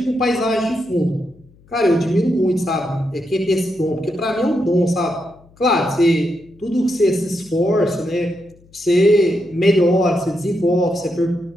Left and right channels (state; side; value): noise; left; hum, 28 dB below the sound